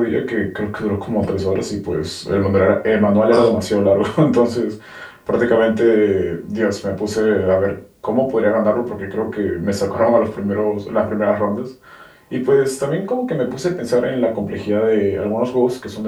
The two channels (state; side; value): identical; both; correlation 1.00